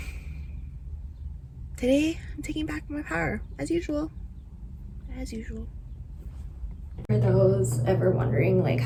Today, I'm taking back my power, as usual. As usual. For those ever wondering like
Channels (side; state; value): both; identical; correlation 1.00